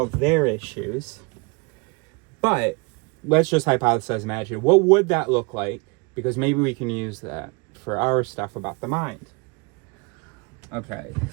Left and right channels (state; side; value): quieter; left; 29.6 dB